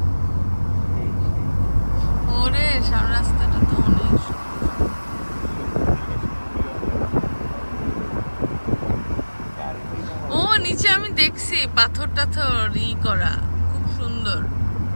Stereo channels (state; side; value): inverted; both; correlation -1.00